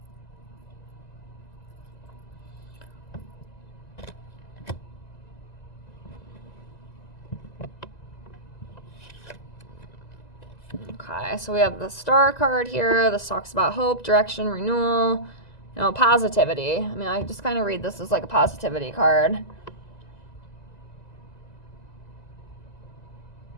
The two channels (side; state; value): right; late; 1.9 ms